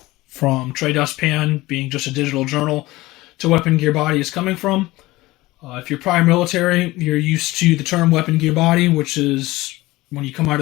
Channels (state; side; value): quieter; right; 19.2 dB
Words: from Trey Dustpan being just a digital journal to Weapon Gear Body is coming from. If you're prior military, you're used to the term Weapon Gear Body, which is when you come out